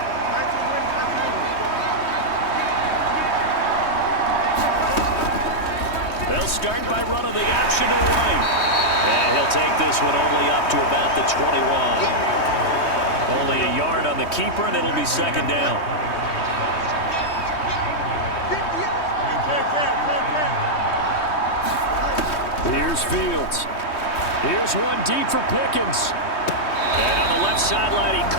They'll start by running the option to the right. And he'll take this one only up to about the 21. Only a yard on the keeper, and it'll be second down. Here's Fields. Here's one deep for Pickens. And on the left sideline, he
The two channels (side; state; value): right; late; 3.2 ms